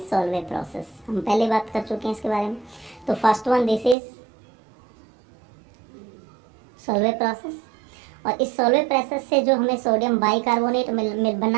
process. हम पहले बात कर चुके हैं इसके बारे में। तो first one this is Solvay process, और इस सॉल्वे प्रोसेस से जो हमें सोडियम बाइकार्बोनेट मिल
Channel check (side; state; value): left; drops out; at 4.0 s